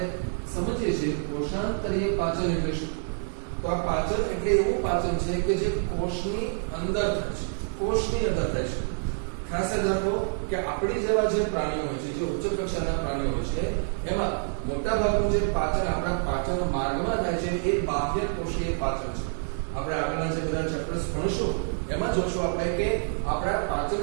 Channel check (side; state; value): left; silent; digital silence